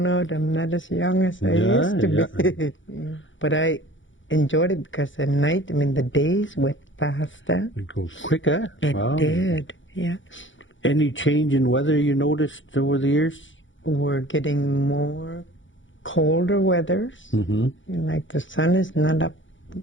out I'm not as young as I used to be. But I enjoyed it because at night, the days went faster. It goes quicker. It did, yeah. Any change in weather you noticed over the years? We're getting more colder weathers. Like the sun is not up.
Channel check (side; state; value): right; late; 0.56 ms